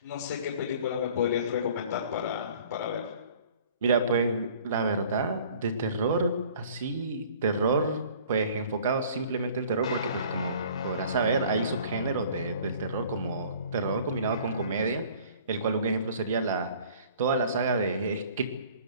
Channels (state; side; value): inverted; both; correlation -0.51